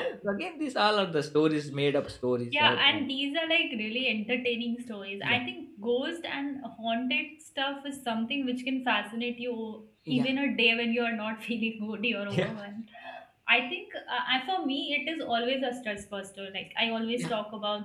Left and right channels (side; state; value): both; identical; correlation 1.00